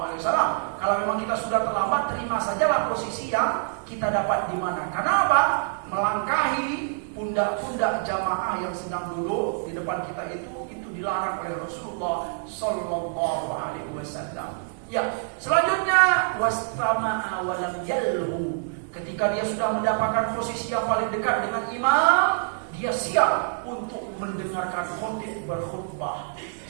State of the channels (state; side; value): silent; left; digital silence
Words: Kalau memang kita sudah terlambat, terima sajalah posisi yang kita dapat di mana. Karena apa? Melangkahi pundak-pundak jamaah yang sedang duduk di depan kita itu dilarang oleh Rasulullah Sallallahu Alaihi Wasallam. Ya, selanjutnya wastama'a walam yalhu. Ketika dia sudah mendapatkan posisi yang paling dekat dengan imam, dia siap untuk mendengarkan khotib berkhutbah.